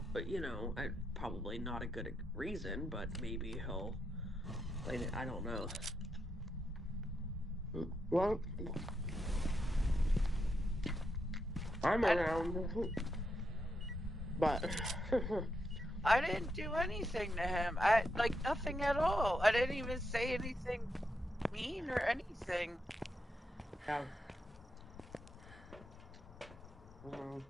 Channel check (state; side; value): normal; both; correlation 0.83